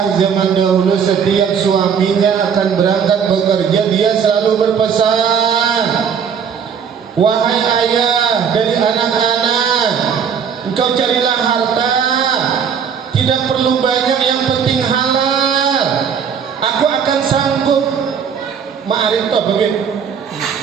zaman dahulu setiap suaminya akan berangkat bekerja dia selalu berpesan, wahai ayah, dari anak-anak. Engkau carilah harta, tidak perlu banyak, yang penting halal. Aku akan sanggup. Ma'arif itu apa, Beb?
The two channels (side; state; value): left; quieter; 7.2 dB